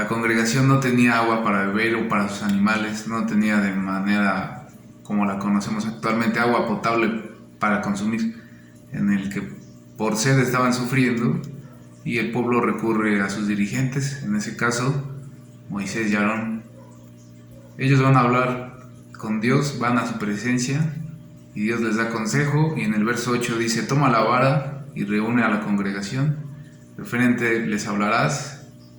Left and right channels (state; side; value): identical; both; correlation 1.00